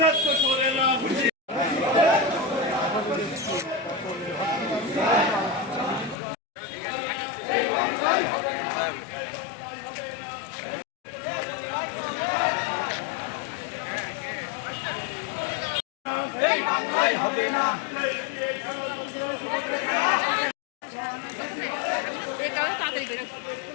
তো সরে না এই বাংলায় হবে না।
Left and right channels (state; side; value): drops out; right; at 6.2 s